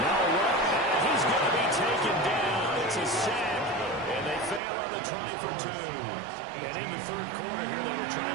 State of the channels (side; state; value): left; drops out; at 4.6 s